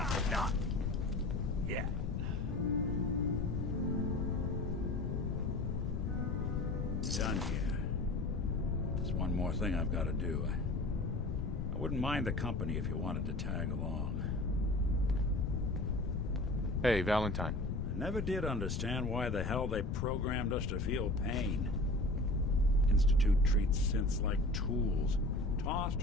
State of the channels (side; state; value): left; noise; rumble, 1 dB below the sound